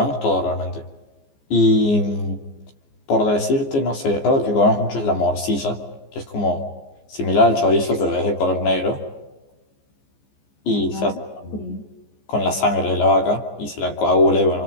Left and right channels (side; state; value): right; late; 14 ms